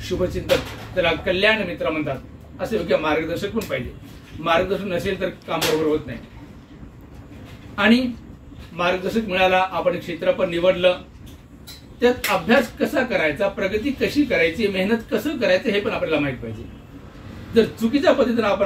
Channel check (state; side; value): identical; both; correlation 1.00